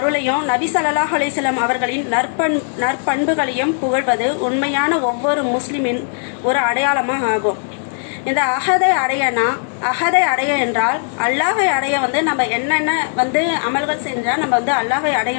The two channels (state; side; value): silent; right; 67 dB below the other